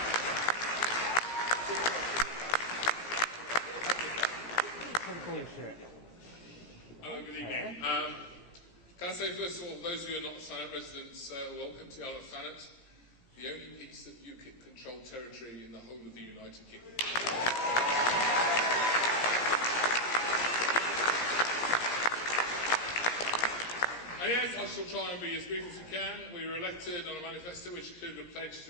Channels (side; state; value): right; late; 17 ms